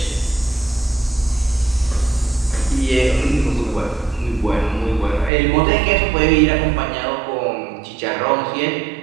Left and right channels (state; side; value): drops out; left; at 5.3 s